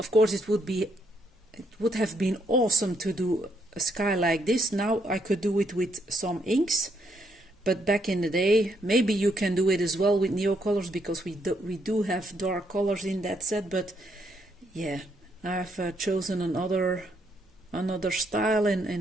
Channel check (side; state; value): both; normal; correlation 0.74